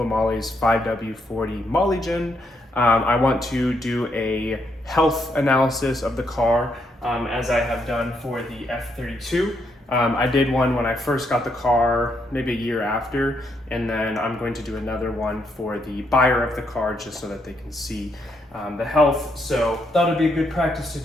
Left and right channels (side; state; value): both; normal; correlation 0.76